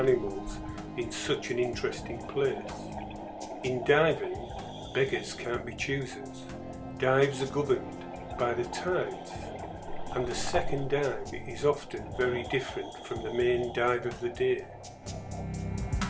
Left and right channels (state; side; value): identical; both; correlation 1.00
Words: in such an interesting place. In diving, beggars can't be choosers. Dives are governed by the tides, and the second dive is often very different from the main dive of the day.